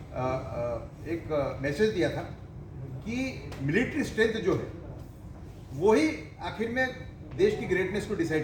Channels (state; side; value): identical; both; correlation 1.00